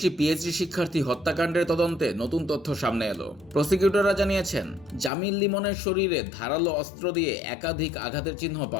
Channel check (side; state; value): right; drops out; at 5.1 s